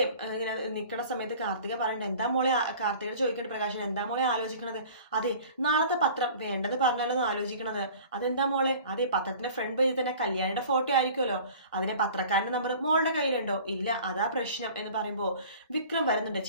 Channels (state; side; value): inverted; both; correlation -0.45